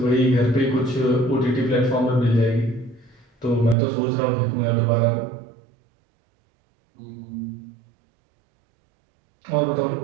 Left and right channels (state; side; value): drops out; left; at 3.8 s